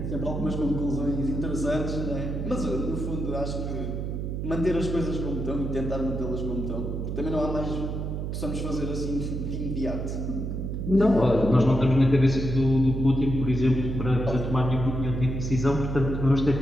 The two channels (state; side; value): noise; right; hum, 3 dB below the sound